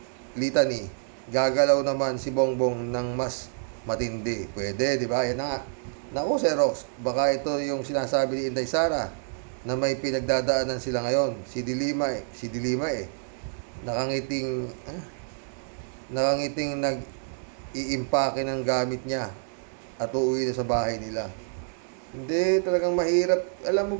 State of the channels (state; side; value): silent; left; digital silence